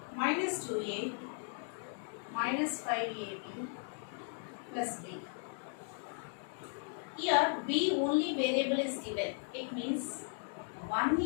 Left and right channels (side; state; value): right; silent; 53 dB below the other